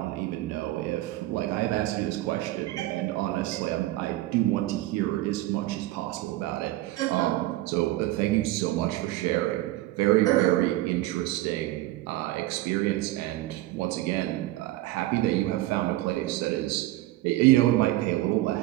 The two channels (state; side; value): quieter; left; 16.8 dB